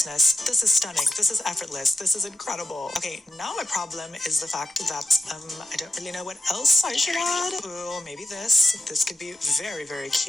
This is stunning. This is effortless. This is incredible. Okay, now my problem is the fact that, I don't really know what else I should add. Ooh, maybe this. This could be very, very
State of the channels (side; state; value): both; normal; correlation 0.92